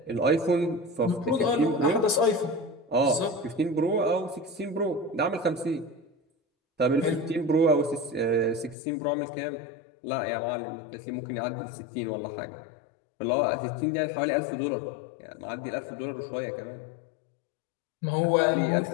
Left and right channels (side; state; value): right; drops out; at 8.8 s